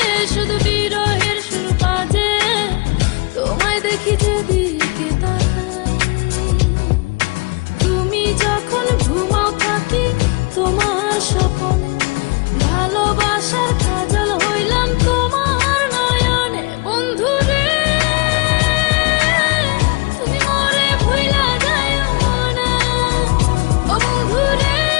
শুধু বিরহের সুর বাজে, তোমায় দেখি যেদিকে তাকাই। তুমি যখন ঘুমাও থাকি তোমার স্বপনে, ভালোবাসার কাজল হইলাম তোমার নয়নে। বন্ধু রে তুমি মরে ভুইলা যায়ো না, ও বন্ধু রে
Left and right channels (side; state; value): right; quieter; 28.9 dB